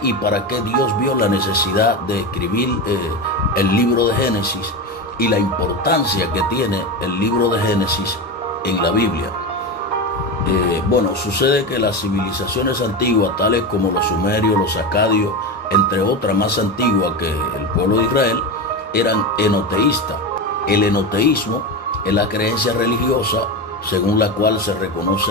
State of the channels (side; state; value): both; normal; correlation 0.20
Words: y para qué Dios vio la necesidad de escribir el libro de Génesis y la importancia que tiene el libro de Génesis en la Biblia? Sucede que las civilizaciones antiguas, tales como los sumerios, los acadios, entre otras más antiguas que el pueblo de Israel, eran enoteístas. El enoteísmo es la creencia religiosa según la cual se